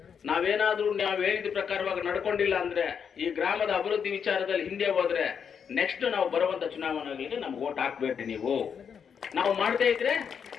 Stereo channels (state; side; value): quieter; right; 7.1 dB